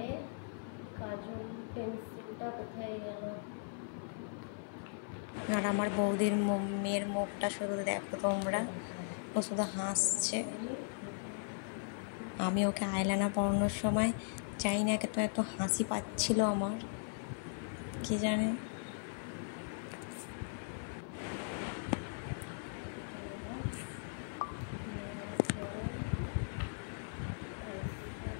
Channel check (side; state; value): right; silent; 52 dB below the other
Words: কাজল পেন্সিলটা কোথায় গেল? আর আমার বৌদির মেয়ের মুখটা শুধু দেখো তোমরা, ও শুধু হাসছে। আমি ওকে আইলাইনার পরানোর সময় চাই না তো এত হাসি পাচ্ছিল আমার, কি জানে।